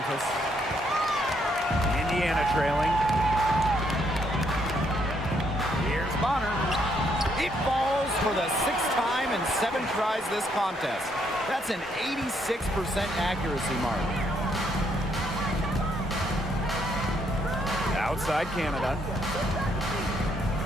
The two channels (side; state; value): both; normal; correlation 0.72